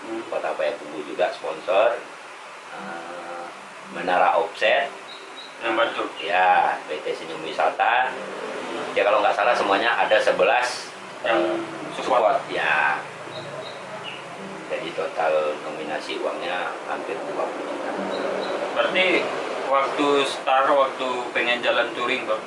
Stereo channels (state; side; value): identical; both; correlation 1.00